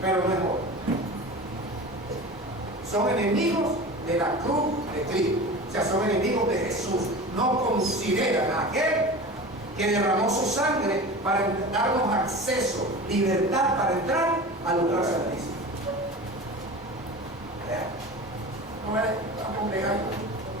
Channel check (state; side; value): normal; both; correlation 0.33